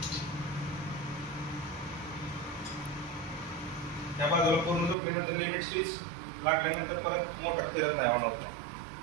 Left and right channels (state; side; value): drops out; left; at 5.0 s